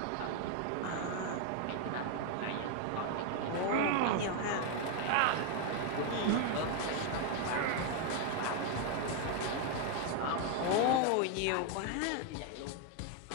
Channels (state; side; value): different; both; correlation 0.01